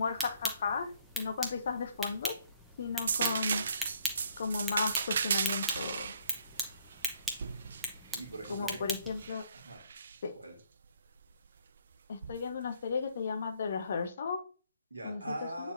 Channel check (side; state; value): both; inverted; correlation -0.59